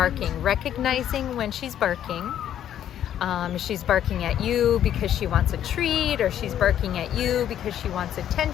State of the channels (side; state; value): right; quieter; 10.6 dB